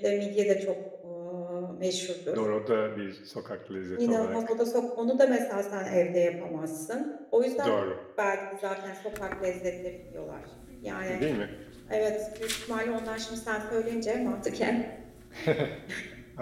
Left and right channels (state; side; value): identical; both; correlation 1.00